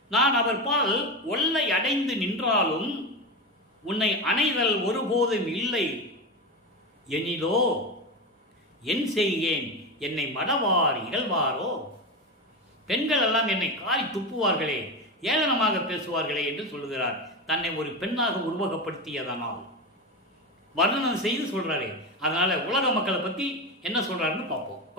நான் அவர் பால் ஒல்லை அடைந்து நின்றாலும் உன்னை அணைதல் ஒருபோதும் இல்லை எனிலோ என் செய்கேன், என்னை மடவார் இகழ்வாரோ. பெண்கள் எல்லாம் என்னை காரி துப்புவார்களே, ஏளனமாக பேசுவார்களே என்று சொல்லுகிறார். தன்னை ஒரு பெண்ணாக உருவகப்படுத்தியதனால் வர்ணனம் செய்து சொல்றாரு. அதனால உலக மக்களை பற்றி என்ன சொல்றாருன்னு பார்ப்போம்.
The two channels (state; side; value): normal; both; correlation 0.19